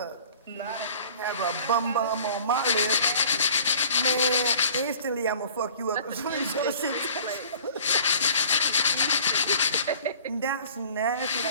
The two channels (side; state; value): both; inverted; correlation -0.48